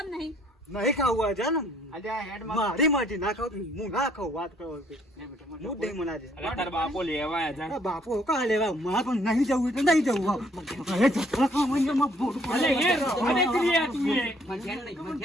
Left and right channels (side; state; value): both; normal; correlation 0.65